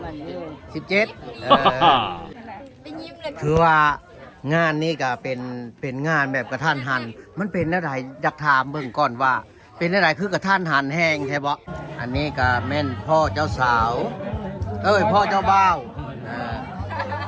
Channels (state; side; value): identical; both; correlation 1.00